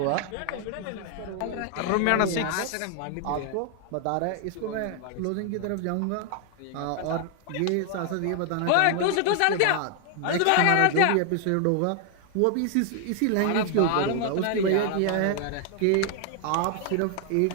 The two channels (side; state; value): both; different; correlation 0.00